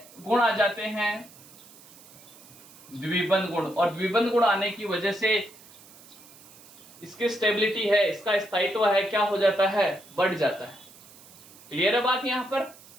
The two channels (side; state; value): right; noise; hiss, 22 dB below the sound